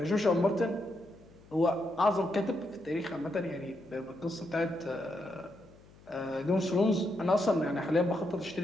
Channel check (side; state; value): left; noise; hum, 25 dB below the sound